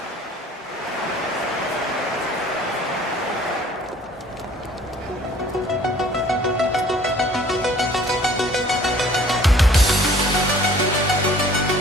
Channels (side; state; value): both; normal; correlation 0.54